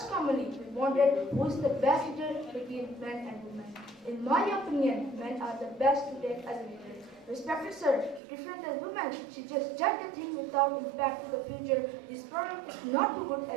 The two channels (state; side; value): drops out; left; at 8.2 s